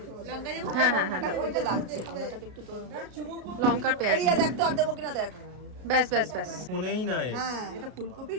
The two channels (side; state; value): left; late; 33 ms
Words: হ্যাঁ হ্যাঁ হ্যাঁ, দাও। ওইটা লাগছে ওটাকে একটু তো লঙ্কার পেঁয়াজ এই দেখ তো আর দেবো কিনা দেখ। ব্যাস ব্যাস ব্যাস। ফোনেই নাই। হ্যাঁ এটা